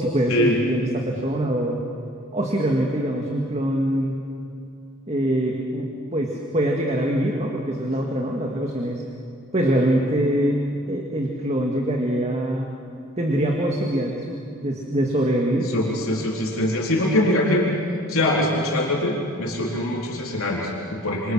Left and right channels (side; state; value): both; normal; correlation 0.54